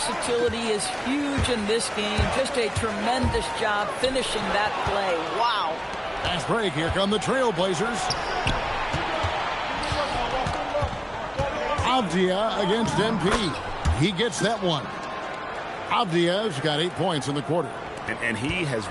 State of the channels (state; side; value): identical; both; correlation 1.00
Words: is huge in this game. Just a tremendous job finishing that play. Wow. Fast break. Here come the Trailblazers. Avdia against MP. He gets that one. Avdia's got 8 points in the quarter. And he has